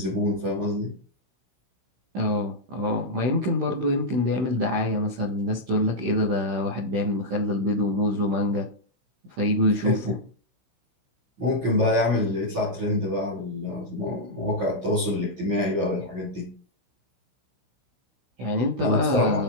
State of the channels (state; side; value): late; left; 16 ms